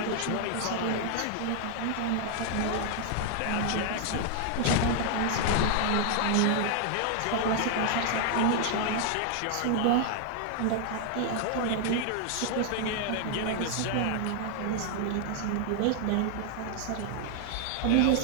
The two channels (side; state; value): both; different; correlation 0.00